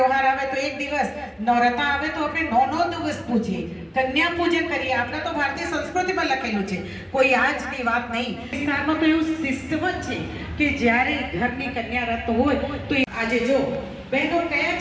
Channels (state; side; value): identical; both; correlation 1.00